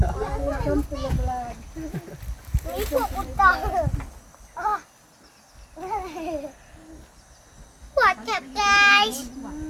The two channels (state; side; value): identical; both; correlation 1.00